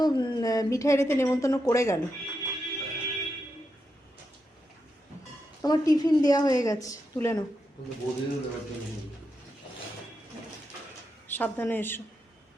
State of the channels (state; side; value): normal; both; correlation 0.85